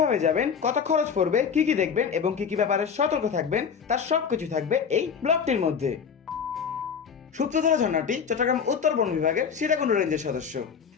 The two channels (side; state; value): right; quieter; 6.7 dB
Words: যাবেন, কত খরচ পড়বে, কি কি দেখবেন এবং কি কি ব্যাপারে সতর্ক থাকবেন, তার সবকিছু থাকবে এই ব্লগটির মধ্যে। সূত্রধারা ঝর্ণাটি চট্টগ্রাম উত্তর বন বিভাগের সীতাকুণ্ড রেঞ্জের সদস্য।